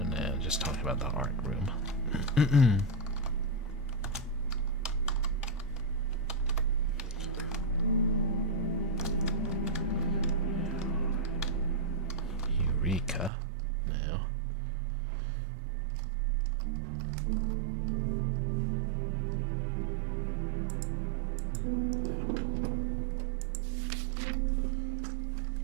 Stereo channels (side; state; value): left; drops out; at 13.3 s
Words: No, just talking about the art room. Eureka. No.